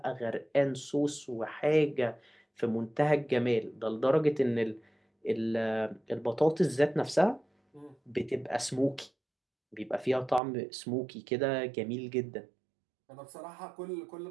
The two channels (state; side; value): drops out; left; at 10.4 s